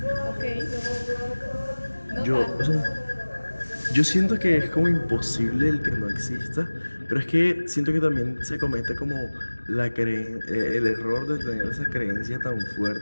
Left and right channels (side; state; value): both; inverted; correlation -1.00